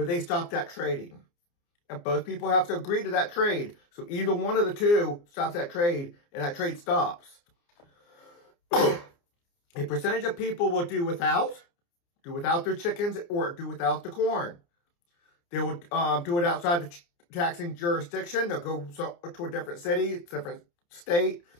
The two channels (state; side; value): late; right; 29 ms